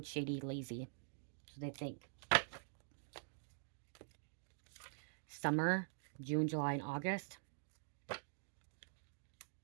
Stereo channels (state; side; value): silent; left; digital silence